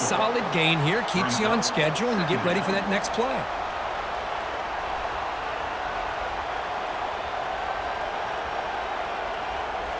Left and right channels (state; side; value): identical; both; correlation 1.00